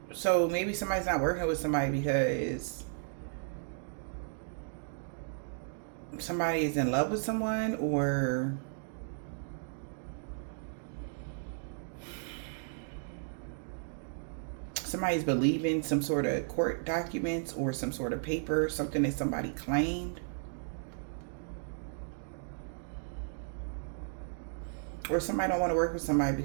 maybe somebody's not working with somebody because somebody is in love with someone, or somebody's believing some sort of court documents or some sort of paper, something that somebody claimed. Or somebody don't want to work with somebody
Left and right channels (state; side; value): silent; left; digital silence